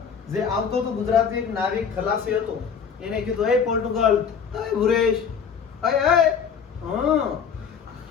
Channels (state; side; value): quieter; right; 6.7 dB